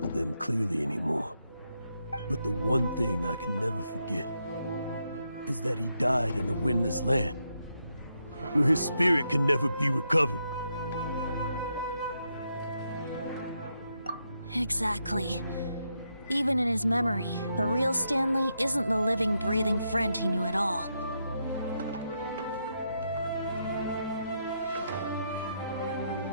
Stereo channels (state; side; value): inverted; both; correlation -0.81